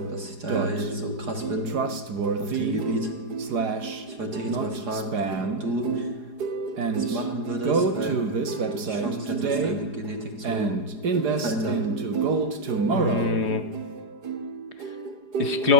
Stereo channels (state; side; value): late; left; 4.9 ms